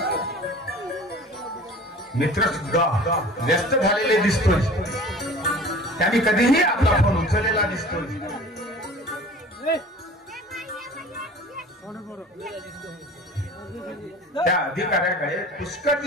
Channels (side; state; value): both; normal; correlation 0.43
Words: मित्र सुद्धा व्यस्त झालेले दिसतोय. त्यांनी कधीही आपला फोन उचललेला दिसतोय. त्या अधिकाऱ्याकडे पुष्कळ